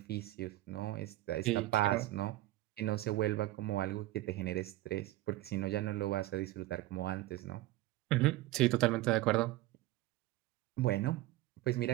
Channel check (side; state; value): left; quieter; 16.9 dB